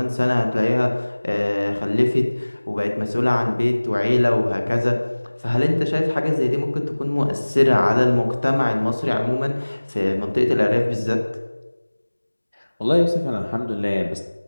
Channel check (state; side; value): inverted; both; correlation -1.00